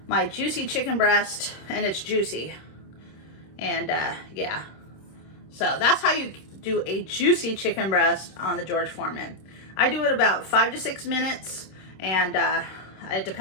my juicy chicken breast, and it's juicy. And yeah, so that's how you do a juicy chicken breast on the George Foreman. I do it about 5 to 6 minutes, and it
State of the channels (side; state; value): right; late; 26 ms